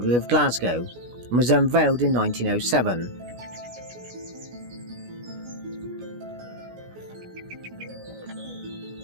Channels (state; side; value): late; left; 16 ms